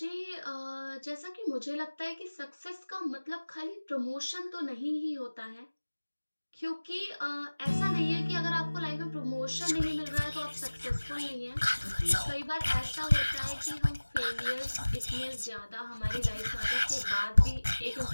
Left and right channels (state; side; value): inverted; both; correlation -1.00